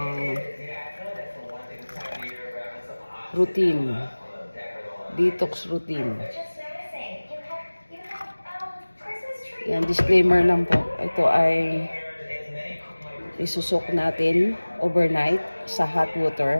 routine, detox routine. Yan, disclaimer lang po, ito ay isusok natin overnight sa hot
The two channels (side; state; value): both; inverted; correlation -1.00